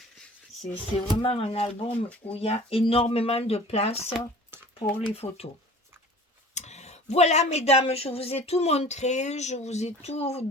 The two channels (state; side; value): normal; both; correlation 0.44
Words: C'est vraiment un album où il y a énormément de place pour les photos. Voilà, mesdames, je vous ai tout montré, je vous ai tout